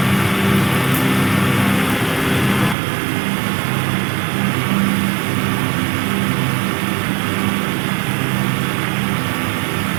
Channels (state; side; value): drops out; left; at 2.8 s